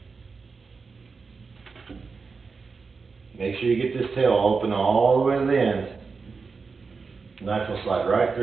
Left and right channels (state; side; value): quieter; left; 4.8 dB